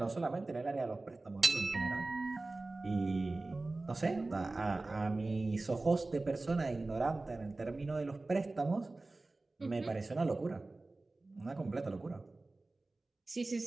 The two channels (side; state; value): left; quieter; 3.2 dB